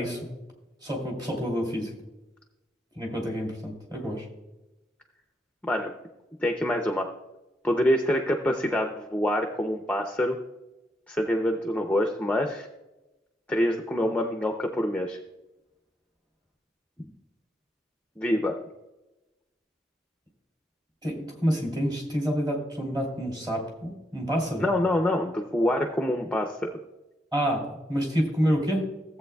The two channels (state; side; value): normal; both; correlation 0.79